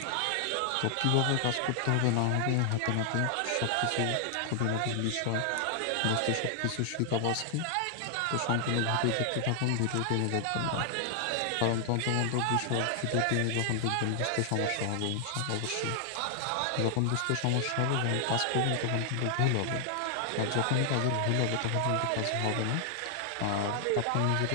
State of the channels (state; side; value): different; both; correlation -0.01